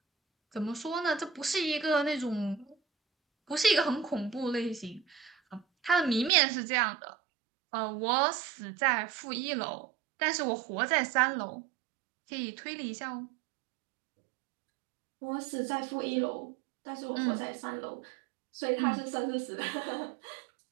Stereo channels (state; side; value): drops out; left; at 6.3 s